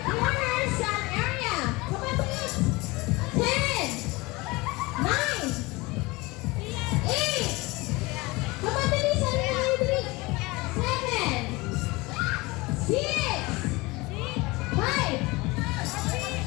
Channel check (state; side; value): quieter; right; 23.1 dB